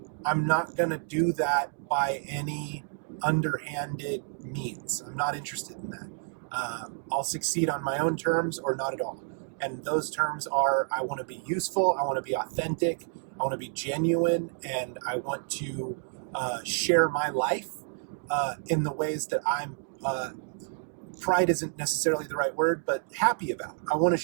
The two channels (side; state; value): left; silent; digital silence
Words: I'm not going to do that by any underhanded means. I'm not interested in that. I'll succeed on my own terms or not at all. And those terms are, I want to be useful, I want to be authentic, I want to be genuine, and I want to share my life in the ways that I'm, pride isn't necessarily the right word, but happy about. I want to